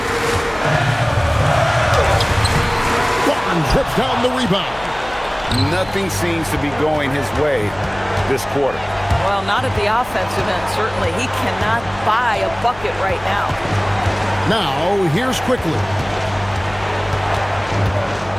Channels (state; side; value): noise; left; hum, 18 dB below the sound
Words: Barnes rips down the rebound. Nothing seems to be going his way this quarter. Well, not at the offensive end, certainly. He cannot buy a bucket right now. Now, here's Quickly.